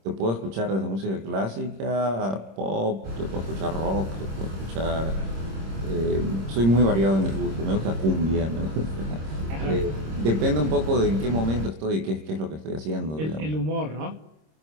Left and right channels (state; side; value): late; left; 26 ms